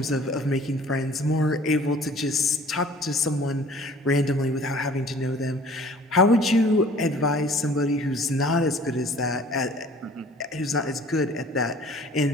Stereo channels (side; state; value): both; normal; correlation 0.50